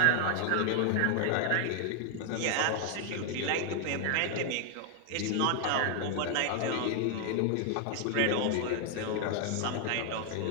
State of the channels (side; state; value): both; different; correlation 0.00